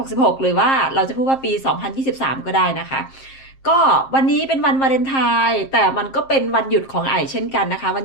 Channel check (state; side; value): late; right; 7.5 ms